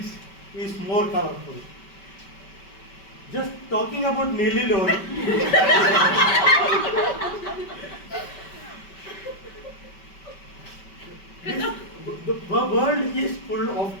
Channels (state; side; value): late; right; 5.2 ms